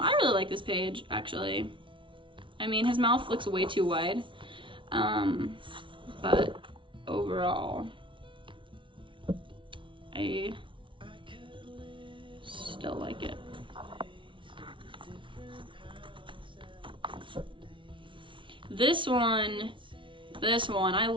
really like this page, actually. I mean, his mouth looks way too wide. But overall, I still like it. This one, I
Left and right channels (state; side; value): late; left; 0.25 ms